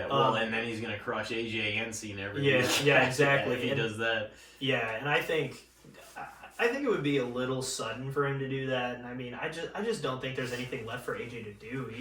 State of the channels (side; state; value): both; identical; correlation 1.00